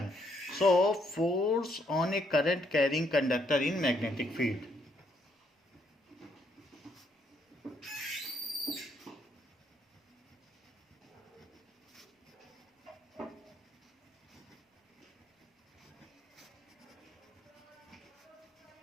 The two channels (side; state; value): both; normal; correlation 0.72